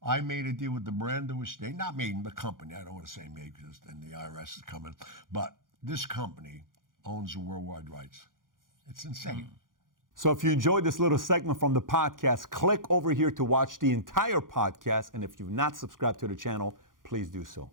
I made a deal with the Brando estate. Not me, the company. I don't want to say me because then the IRS is coming. But this company owns the worldwide rights. It's insane. So if you enjoyed this little segment from the podcast, click over here to watch the entire podcast. And if you've not subscribed to the channel, please do so.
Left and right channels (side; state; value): left; late; 0.90 ms